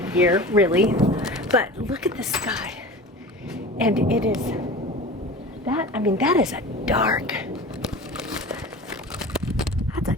year, really. But look at the sky. And it is that, I mean, that is a dark, that's a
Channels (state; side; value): normal; both; correlation 0.36